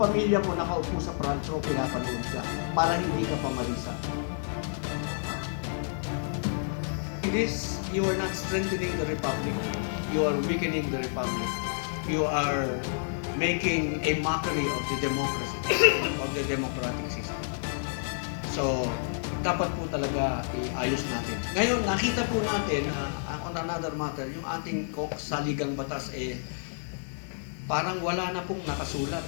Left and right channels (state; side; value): silent; right; digital silence